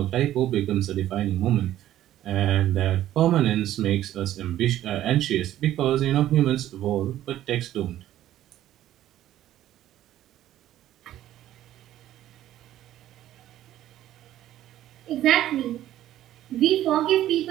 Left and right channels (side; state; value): left; quieter; 13.0 dB